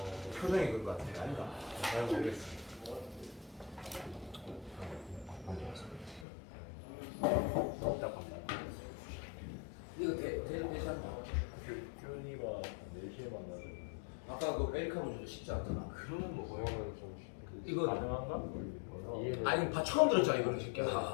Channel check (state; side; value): drops out; right; at 6.2 s